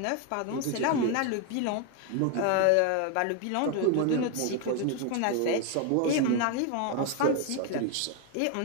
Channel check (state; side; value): different; both; correlation 0.01